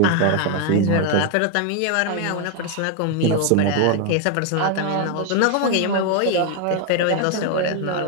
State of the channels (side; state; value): both; different; correlation 0.00